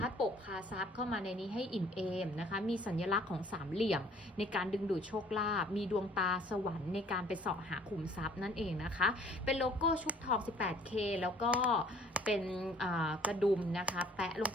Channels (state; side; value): normal; both; correlation 0.56